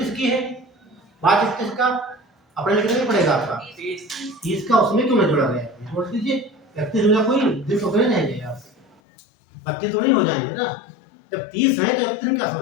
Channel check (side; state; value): right; drops out; at 9.0 s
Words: की है, मार्च 31 का, अपने लिखना नहीं पड़ेगा आपका 30 का, उसमें क्यों नहीं जोड़ा गया, जोड़ दीजिए। 31 हो, कोई दिन तो नहीं रहेंगे यार, 32 तो नहीं हो जाएंगे ना। जब 30 है तो 31 क्या